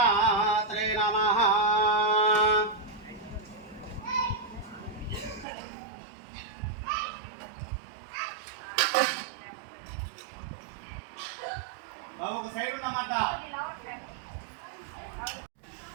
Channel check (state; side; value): drops out; left; at 5.5 s